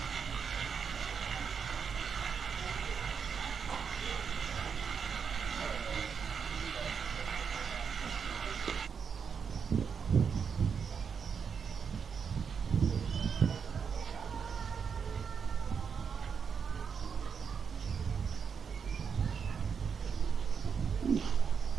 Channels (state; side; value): quieter; left; 6.4 dB